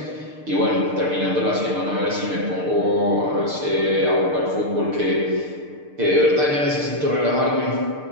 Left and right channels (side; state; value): left; late; 6.7 ms